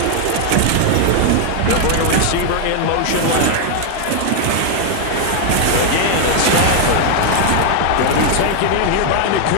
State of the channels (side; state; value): both; different; correlation 0.00